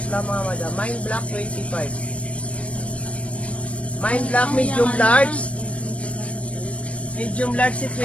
lang mga madam. Mine black, 25. Mine black, medium large. Medium large si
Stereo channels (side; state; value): right; late; 0.063 ms